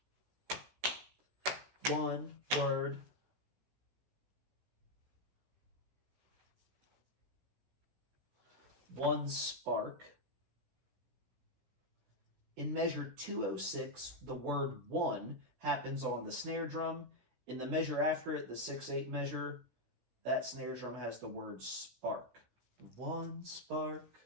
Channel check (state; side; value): late; left; 16 ms